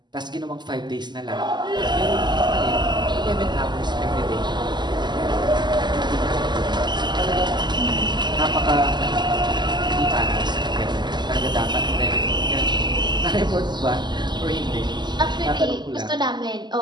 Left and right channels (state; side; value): late; left; 0.21 ms